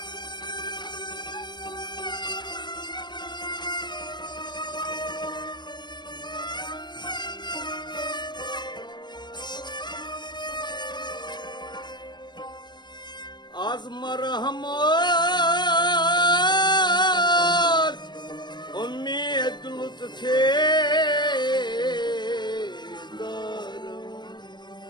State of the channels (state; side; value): late; right; 0.21 ms